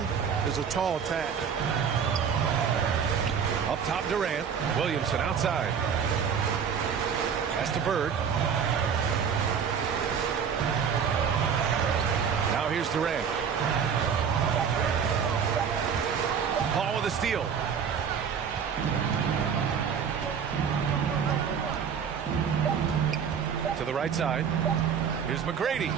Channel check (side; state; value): left; quieter; 7.1 dB